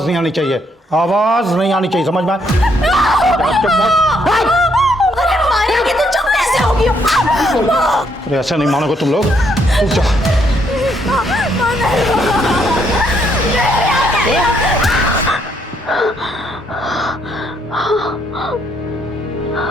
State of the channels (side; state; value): both; normal; correlation 0.72